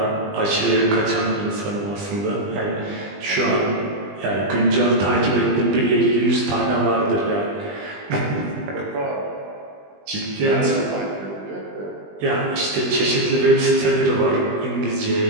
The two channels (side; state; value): left; late; 20 ms